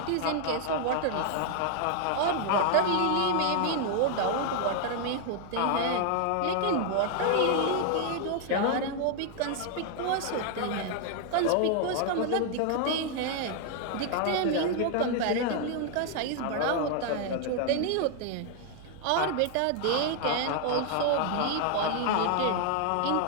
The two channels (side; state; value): both; different; correlation 0.00